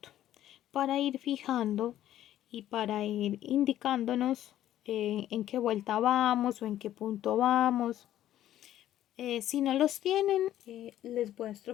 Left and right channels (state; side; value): quieter; right; 12.5 dB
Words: para ir fijando y para ir indicándonos en qué vuelta vamos o en qué punto vamos. Si no los tienen, les